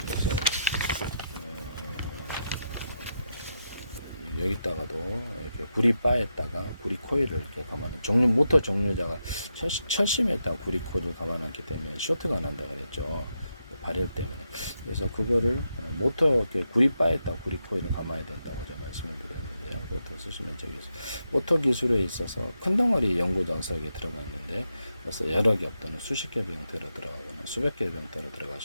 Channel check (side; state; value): both; inverted; correlation -0.84